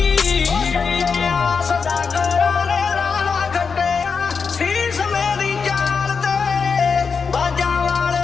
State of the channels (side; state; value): right; quieter; 5.5 dB